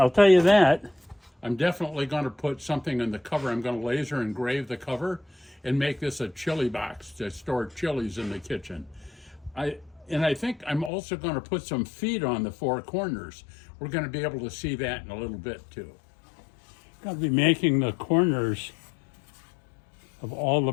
tell you that. I'm definitely going to put something in the cover. I'm going to laser engrave the cover and make this a chili box to store chilies in the kitchen. I think I'm also going to put some feet on the four corners. We're going to be able to see that in a little bit too. I'm going to be making the corners of all the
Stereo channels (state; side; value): drops out; right; at 10.9 s